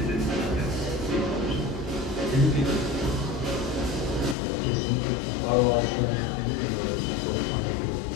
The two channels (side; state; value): right; drops out; at 4.4 s